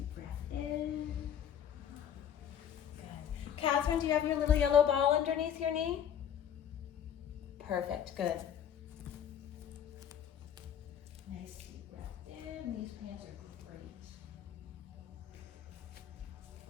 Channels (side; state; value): right; quieter; 9.1 dB